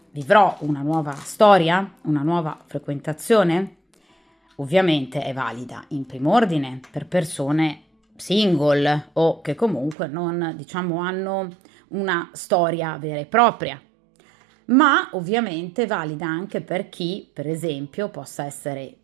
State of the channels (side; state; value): left; drops out; at 10.0 s